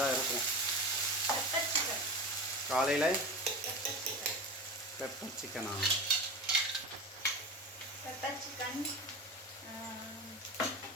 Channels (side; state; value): both; normal; correlation 0.28